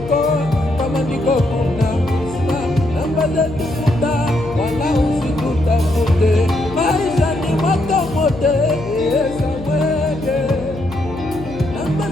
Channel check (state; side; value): noise; left; hum, 13 dB below the sound